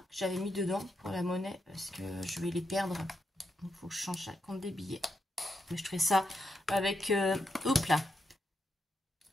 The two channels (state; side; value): normal; both; correlation 0.83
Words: que j'avais mis dedans pour la monnaie, parce que je vais les perdre. Donc il faut que je change ça compte des billets. Mais je ferai ça avec... hop là.